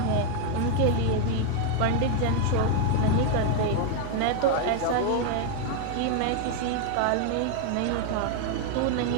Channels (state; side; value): different; both; correlation 0.00